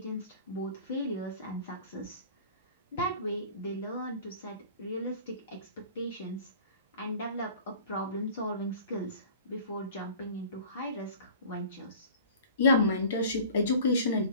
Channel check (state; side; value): inverted; both; correlation -0.44